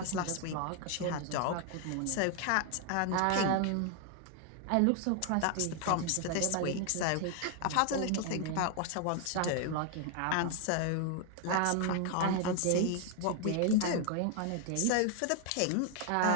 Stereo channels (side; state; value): both; different; correlation 0.00